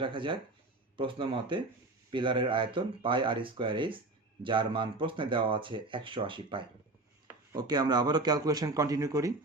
রাখা যাক। প্রশ্ন মতে পিলারের আয়তন পাই আর স্কোয়ার এইচ, যার মান প্রশ্নে দেওয়া আছে 180 পাই। ওকে, আমরা আবারও ক্যালকুলেশন কন্টিনিউ করি।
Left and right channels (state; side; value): quieter; left; 3.0 dB